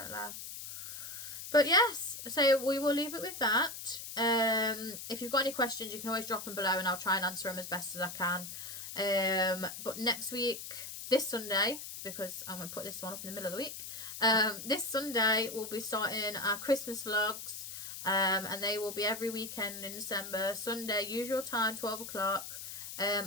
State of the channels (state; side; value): noise; left; hiss, 9 dB below the sound